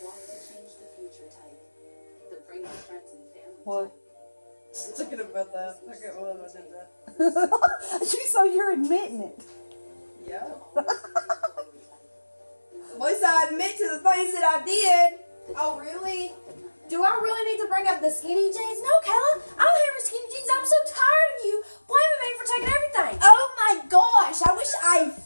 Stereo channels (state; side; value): inverted; both; correlation -1.00